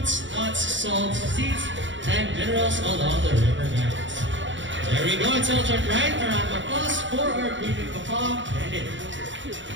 nuts, salt, seeds, and minerals along the river banks. There we go, intelligent, right? A round of applause for our breeding macaw bandit.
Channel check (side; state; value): left; late; 0.54 ms